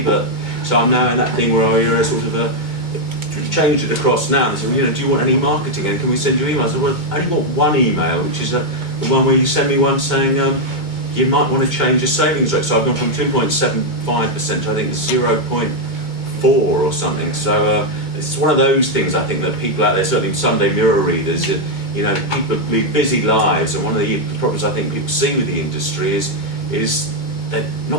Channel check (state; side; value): late; right; 2.2 ms